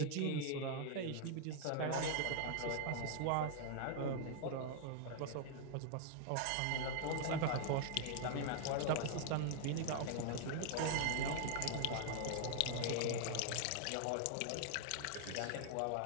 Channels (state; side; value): different; both; correlation 0.00